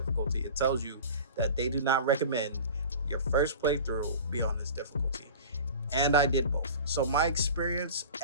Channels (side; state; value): both; inverted; correlation -0.37